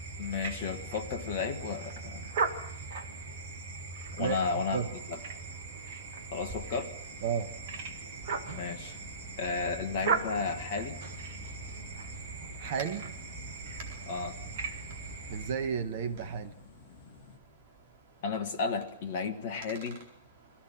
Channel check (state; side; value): inverted; both; correlation -0.38